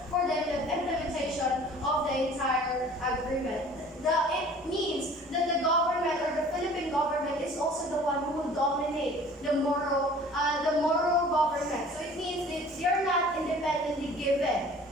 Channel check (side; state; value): both; normal; correlation 0.48